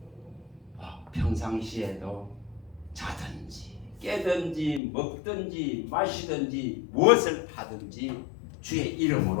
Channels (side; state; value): right; drops out; at 4.8 s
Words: 평상시에도 자든지 깨든지 먹든지 마시든지 무엇을 하든지 주의